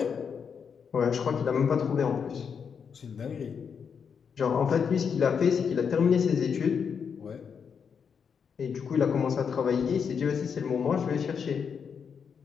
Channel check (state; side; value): quieter; right; 6.6 dB